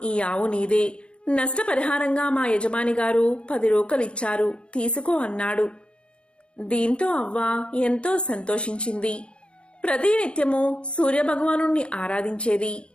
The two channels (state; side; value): late; right; 0.057 ms